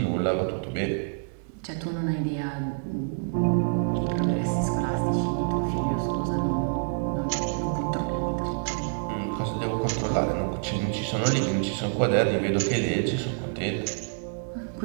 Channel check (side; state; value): left; silent; digital silence